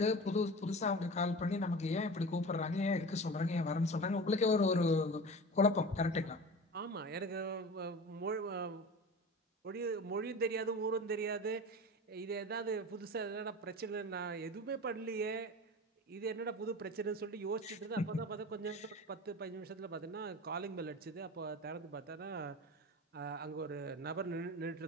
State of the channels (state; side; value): normal; both; correlation 0.33